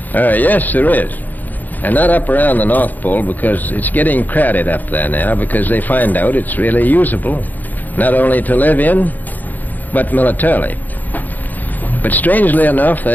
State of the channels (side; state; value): right; late; 0.084 ms